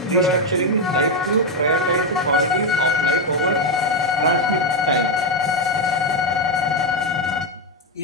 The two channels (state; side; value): normal; both; correlation 0.07